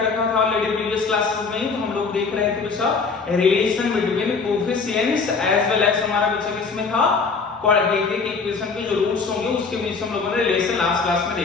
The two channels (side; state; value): right; quieter; 4.8 dB